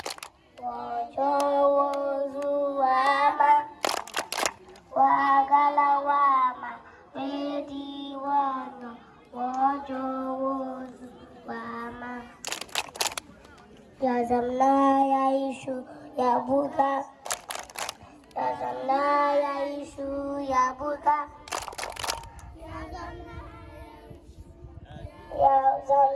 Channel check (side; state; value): both; identical; correlation 1.00